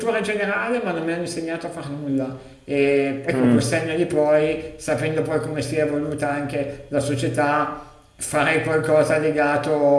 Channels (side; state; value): both; identical; correlation 1.00